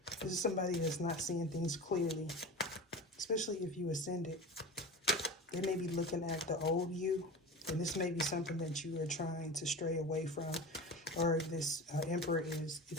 This is somebody that's not seeing things clearly, especially if you ascended. They may be looking at the old you, and this may be something that you are trying to stray away from, or this Emperor is. You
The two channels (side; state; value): both; normal; correlation 0.31